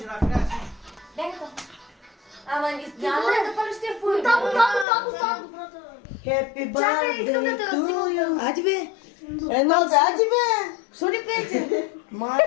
накрая си. Ама няма да запалиш тия фури. Там. Happy Чакай, искам да те birthday to разснимам. you. Ади бе. Едно да, ади бе. Що ни пеете?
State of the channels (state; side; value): drops out; right; at 4.9 s